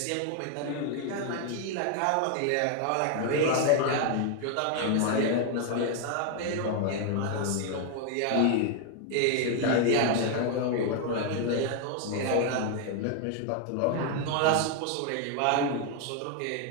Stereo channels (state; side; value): different; both; correlation 0.00